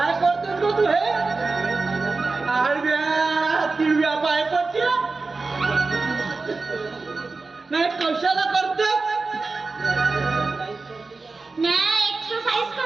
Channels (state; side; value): quieter; left; 3.9 dB